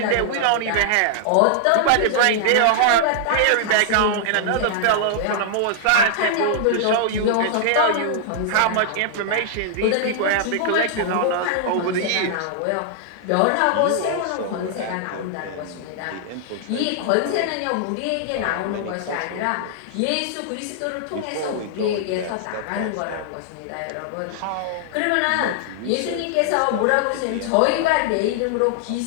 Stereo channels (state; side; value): different; both; correlation -0.01